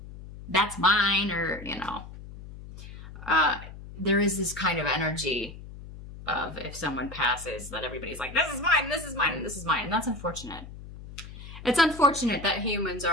that's mine. Or, you know, there is this kind of energy of if someone passes that everybody's like, this is mine, this is mine, this is mine. And that's unfortunate. It's unfortunate that humans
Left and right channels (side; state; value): left; noise; hum, 14 dB below the sound